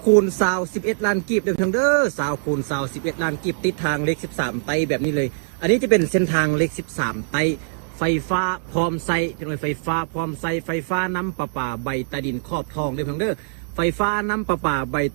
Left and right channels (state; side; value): silent; left; digital silence